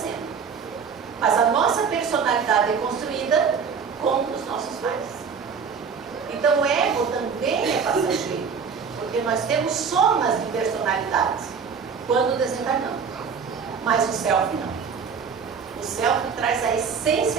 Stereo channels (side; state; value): left; quieter; 6.1 dB